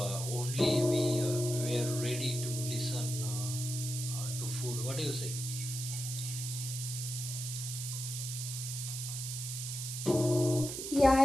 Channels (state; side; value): noise; right; hiss, 5 dB below the sound